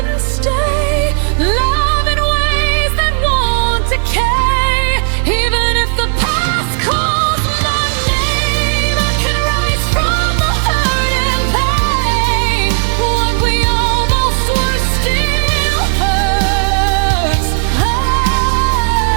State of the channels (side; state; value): left; silent; digital silence